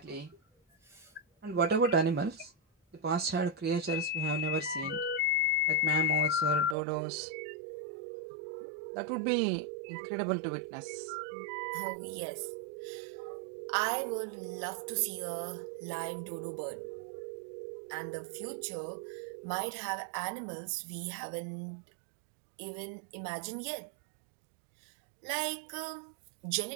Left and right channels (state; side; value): drops out; left; at 6.8 s